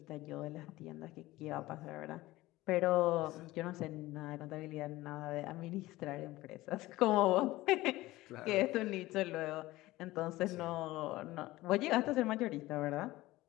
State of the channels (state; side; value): quieter; right; 18.1 dB